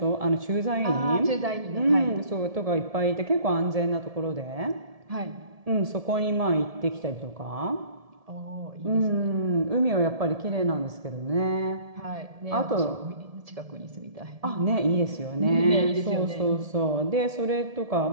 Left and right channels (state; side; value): late; left; 1.7 ms